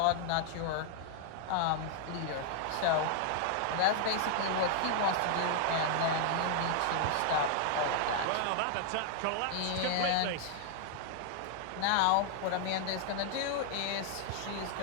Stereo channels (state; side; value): different; both; correlation 0.00